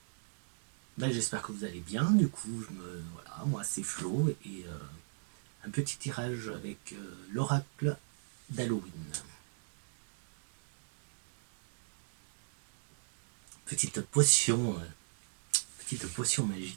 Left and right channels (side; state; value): left; silent; digital silence